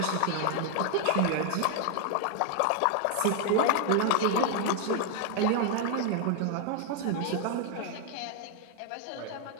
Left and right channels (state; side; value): different; both; correlation 0.00